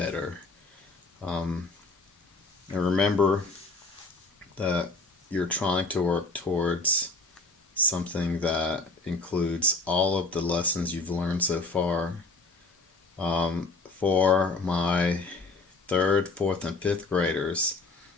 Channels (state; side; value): quieter; right; 3.4 dB